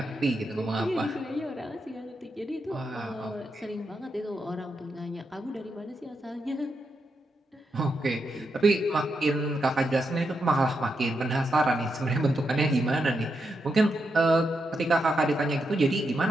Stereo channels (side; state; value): both; normal; correlation 0.84